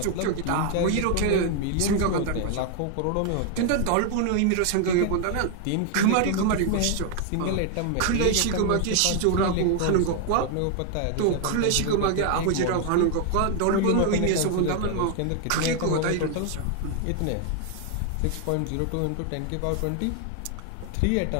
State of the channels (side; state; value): both; different; correlation 0.00